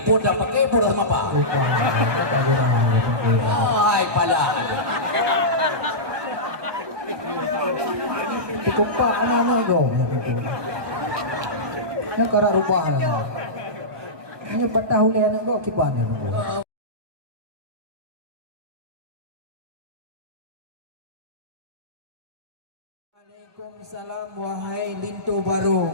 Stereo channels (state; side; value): late; left; 1.2 ms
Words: pun dah pakai pun sama apa oh ai pala cukup pak anak go ya cara rubah ini patah oleh anak go kipan ya Waalaikumsalam wahai lintu baru